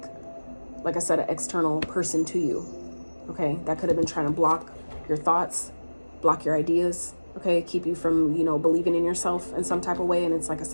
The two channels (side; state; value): both; inverted; correlation -1.00